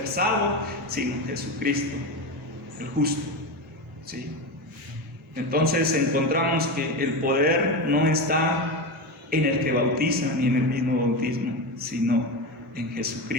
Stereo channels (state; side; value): normal; both; correlation 0.18